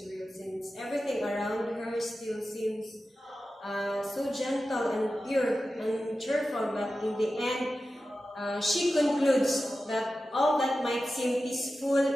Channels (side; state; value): both; normal; correlation 0.93